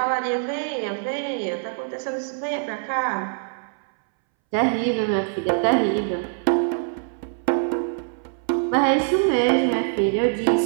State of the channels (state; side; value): silent; left; 63 dB below the other